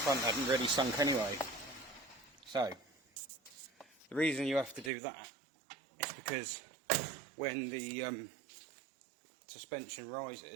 Front hadn't really sunk anyway. So, the reason you have to do that is because when the suspension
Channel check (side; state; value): left; drops out; at 4.9 s